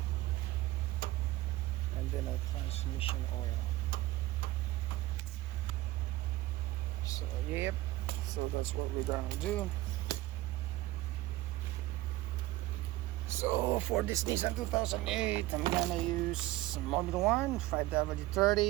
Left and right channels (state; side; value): quieter; left; 17.4 dB